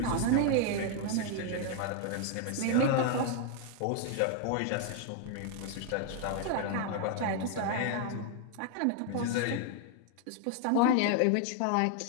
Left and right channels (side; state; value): both; different; correlation 0.00